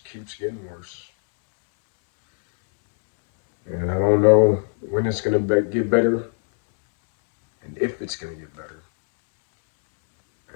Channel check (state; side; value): silent; right; digital silence